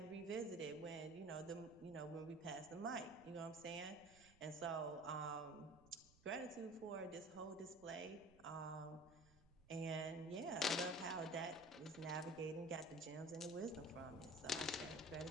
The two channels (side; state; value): right; noise; rumble, 25 dB below the sound